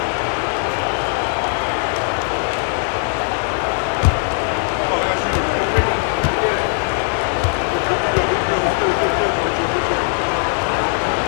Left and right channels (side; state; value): right; silent; 59 dB below the other